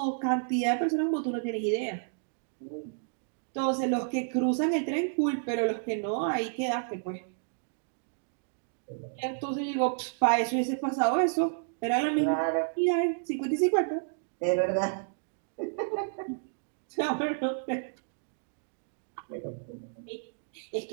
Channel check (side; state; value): left; silent; digital silence